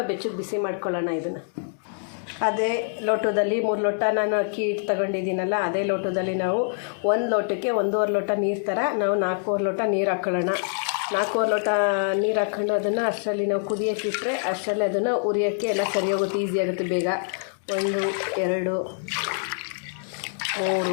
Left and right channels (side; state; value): right; silent; digital silence